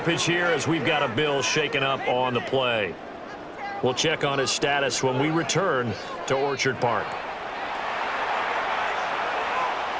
here as we've got a Bill shaken up on the play. We'll check on his status when we return to Orchard Park.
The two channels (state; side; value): identical; both; correlation 1.00